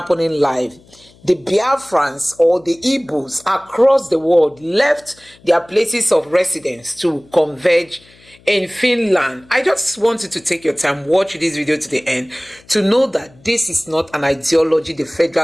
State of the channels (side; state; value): left; noise; hum, 28 dB below the sound